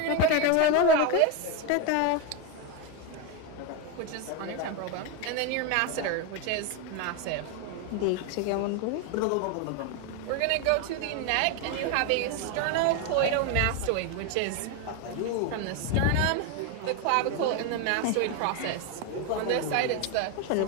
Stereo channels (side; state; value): both; different; correlation 0.02